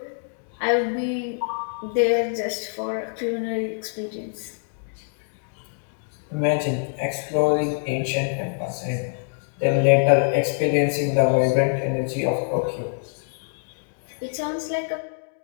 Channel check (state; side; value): silent; right; 62 dB below the other